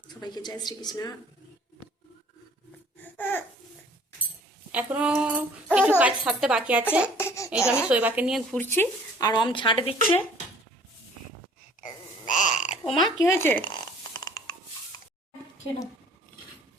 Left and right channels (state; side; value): normal; both; correlation 0.54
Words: সবাইকে জয় শ্রীকৃষ্ণ। এখনো কিছু কাজ সারতে বাকি আছে। এই যে আমি শৈবাকে নিয়ে ঘুরছি আর ঝাঁট দিচ্ছে। ও মা, কি হয়েছে?